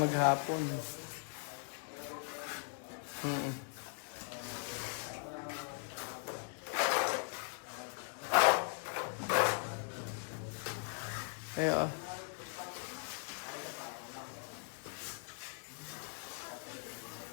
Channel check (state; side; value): silent; right; 51 dB below the other